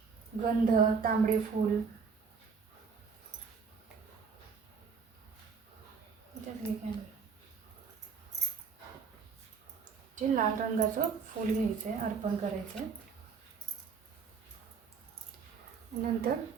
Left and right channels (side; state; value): left; quieter; 5.6 dB